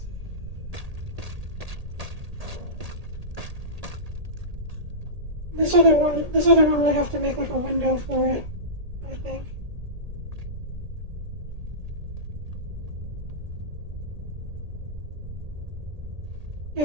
This other one would have to make like a window for it, I think.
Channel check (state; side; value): late; left; 1.8 ms